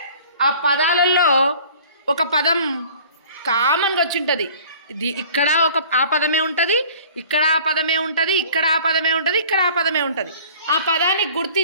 ఆ పదాలలో ఒక పదం కామన్గా వచ్చి ఉంటుంది. ఇక్కడ ఆ పదమే ఉంటుంది, ఇక్కడ ఆ పదమే ఉంటుంది, ఇక్కడ ఆ పదమే ఉంటుంది, ఇక్కడ ఆ పదమే ఉంటుంది. ఆ పదాన్ని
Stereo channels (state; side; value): inverted; both; correlation -0.48